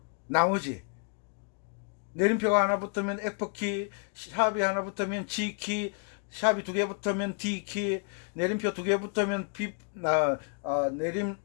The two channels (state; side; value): quieter; right; 38.4 dB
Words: 내림표가 하나 붙으면 F키, 샵이 하나 붙으면 G키, 샵이 두 개 붙으면 D키, 내림표 두 개 붙으면 B